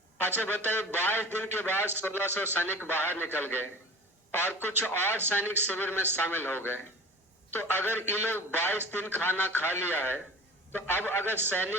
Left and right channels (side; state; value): both; normal; correlation 0.38